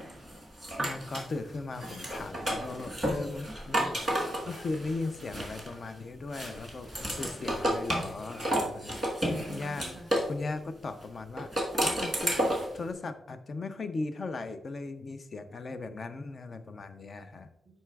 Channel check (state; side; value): normal; both; correlation 0.83